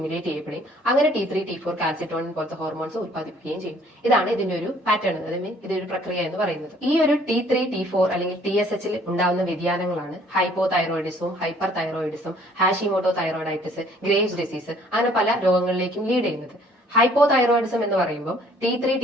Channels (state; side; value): normal; both; correlation 0.58